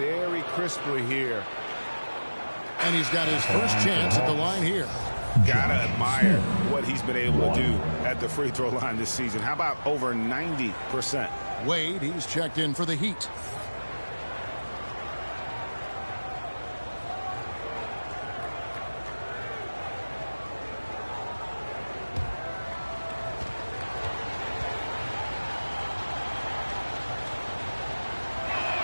crisply here. And he's got his first chance at the line here. Gotta admire what he's been able to do at the free throw line this season. How about over 90%? Wade, he's checked in for the Heat.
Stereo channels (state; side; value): inverted; both; correlation -1.00